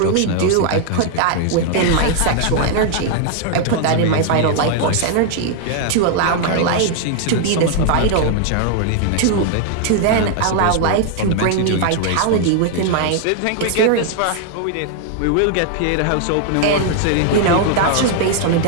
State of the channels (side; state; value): both; different; correlation 0.00